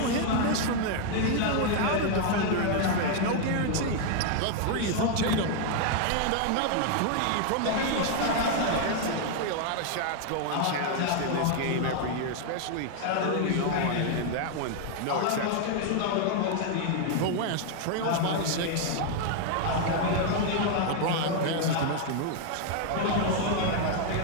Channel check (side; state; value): both; different; correlation 0.00